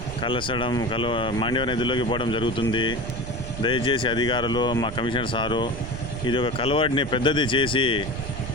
మాండ్యవ నదిలోకి పోవడం జరుగుతుంది. దయచేసి అధికారులు, మా కమిషనర్ సారు ఇది ఒక కలవాడిని పెద్దది చేసి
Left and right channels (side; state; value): right; noise; rumble, 9 dB below the sound